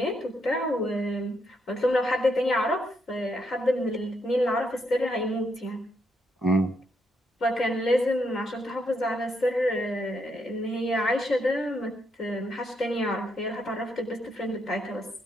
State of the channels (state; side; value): normal; both; correlation 0.78